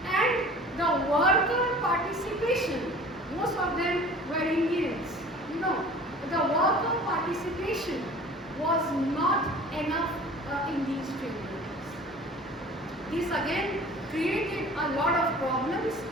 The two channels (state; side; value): normal; both; correlation 0.44